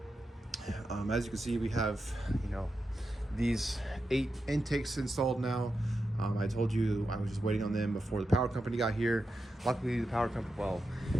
as you can see, we have, these 8 intakes installed now. I told you I was just waiting on them before the power company got here. Luckily, the power company, well,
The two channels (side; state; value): both; normal; correlation 0.89